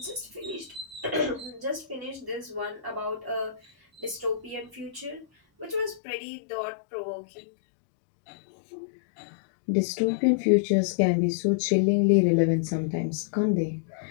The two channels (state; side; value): drops out; right; at 6.0 s